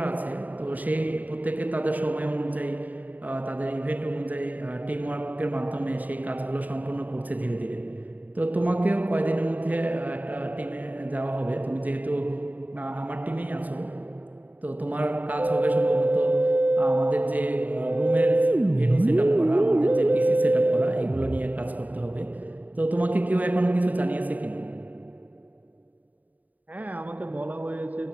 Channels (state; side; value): late; left; 0.078 ms